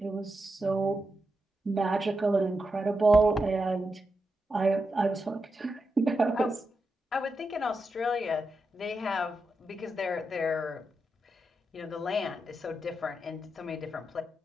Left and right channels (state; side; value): normal; both; correlation 0.87